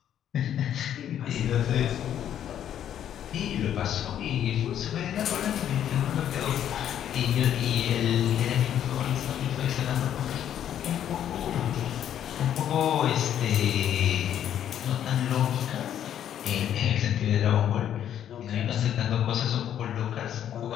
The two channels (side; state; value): right; quieter; 10.2 dB